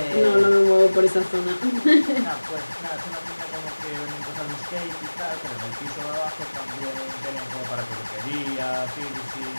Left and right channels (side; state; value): both; inverted; correlation -1.00